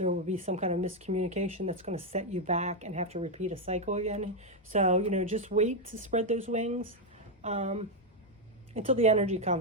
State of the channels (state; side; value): normal; both; correlation 0.02